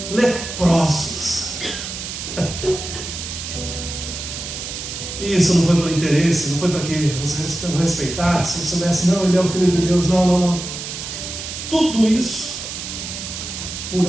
leprosos. E isso não foi pelo interesse, não foi para que você o respeitasse, se soubesse, não, ele é o Filho de Deus, não. Tudo isso por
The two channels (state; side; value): noise; right; hiss, 7 dB below the sound